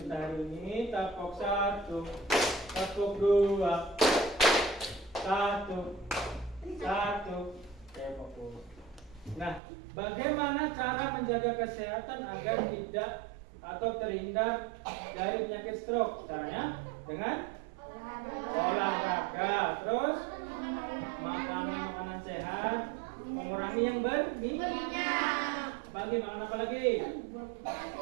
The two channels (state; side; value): drops out; left; at 9.6 s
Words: hari ini. Tepuk 1, tepuk 2, 1, 1. Oke, fokus. Nah, bagaimana cara menjaga kesehatan agar tidak atau terhindar dari penyakit stroke? Caranya dengan olahraga, terus makan makanan sehat, mengurangi yang berminyak. Bagi makan apa lagi?